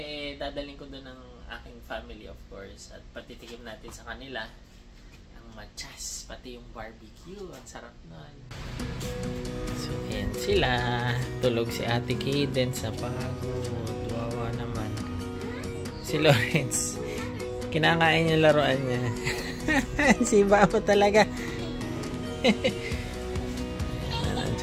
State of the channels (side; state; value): both; identical; correlation 1.00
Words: dadalhin ko doon ng aking family, of course. At patitikim natin sa kanila machas, pati yung barbecue. Ang sarap nun. So, ayan sila. Tulog si Ate Cadence sa pagod. Wawa naman. Si Lawrence, kinakain yung laruan niya. Si Babo talaga.